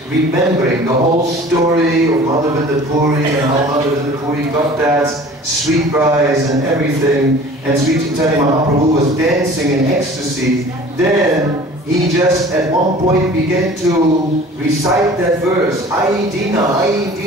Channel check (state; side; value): normal; both; correlation 0.45